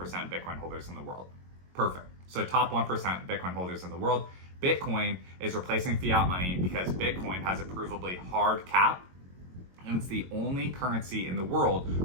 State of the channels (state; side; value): late; left; 22 ms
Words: Bitcoin holders in the world. Perfect. So top 1% Bitcoin holders in the world. Bitcoin is replacing fiat money because Bitcoin has a provably hard cap, and it's the only currency in the